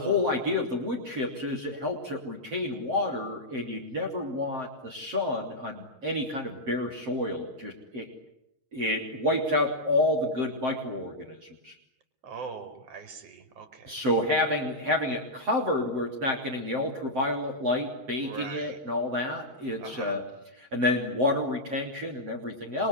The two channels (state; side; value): late; left; 7.7 ms